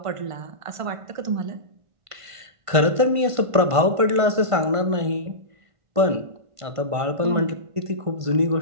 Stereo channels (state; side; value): late; left; 1.5 ms